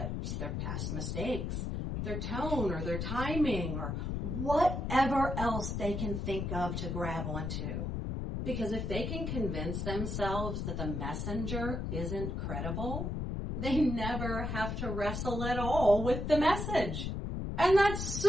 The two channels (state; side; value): noise; left; rumble, 2 dB below the sound